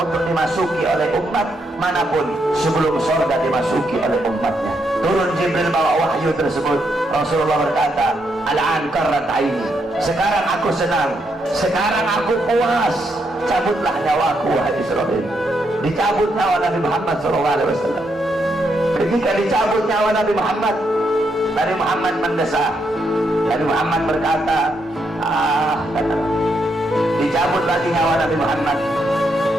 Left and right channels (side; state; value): both; normal; correlation 0.79